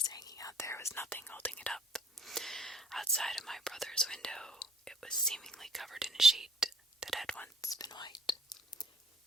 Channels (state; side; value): normal; both; correlation 0.55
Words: hanging out there with nothing holding it up. Outside of my brother's window, it was seemingly covered in a sheet that had once been white.